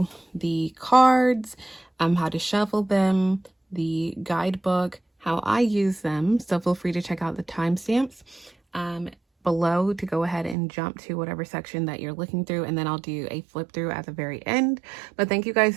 the cards, how to shuffle them, the guidebook, how I use them. So feel free to check out the timestamps below to go ahead and jump to whatever section that you're looking through, and then I'll do a flip through at the very end. But thank you guys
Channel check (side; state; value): left; drops out; at 10.6 s